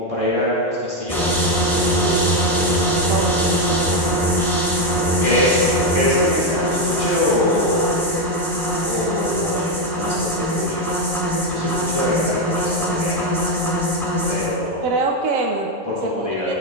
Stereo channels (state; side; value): normal; both; correlation 0.06